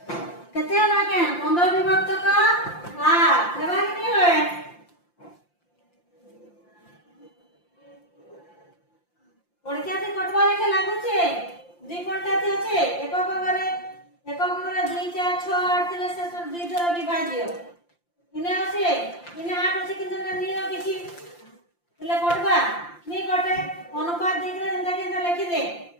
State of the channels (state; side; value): late; right; 5.8 ms